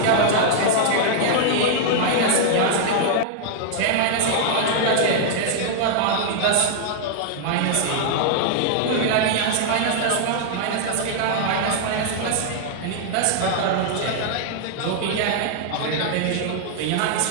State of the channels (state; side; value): different; both; correlation -0.01